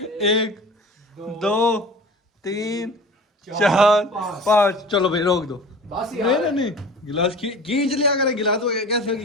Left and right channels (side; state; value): both; normal; correlation 0.39